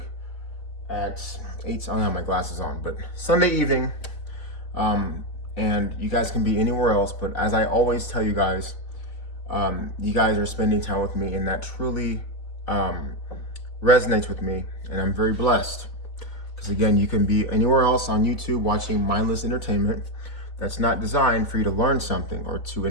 at 8. I don't have my glasses on, but Sunday evening. And you guys can be anywhere else, but as I always tell you guys are spending time with me, and that truly resonates with me, and I'm very blessed. Because again, you can be anywhere else on YouTube watching mindless entertainment that's not designed for you to learn something or to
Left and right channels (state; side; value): late; right; 4.0 ms